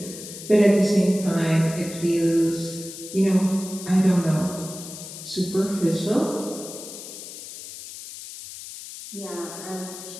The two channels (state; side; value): noise; left; hiss, 12 dB below the sound